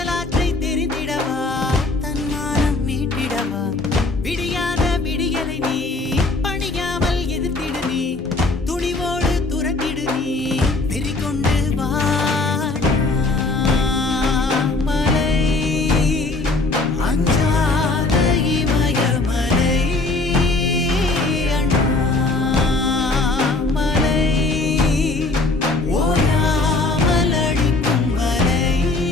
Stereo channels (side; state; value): right; quieter; 3.3 dB